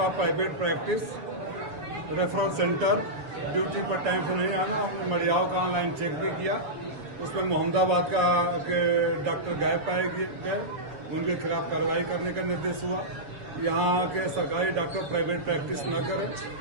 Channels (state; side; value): late; left; 7.2 ms